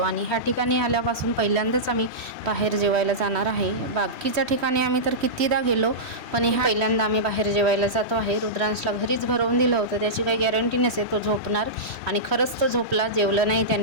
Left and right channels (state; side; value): late; left; 3.1 ms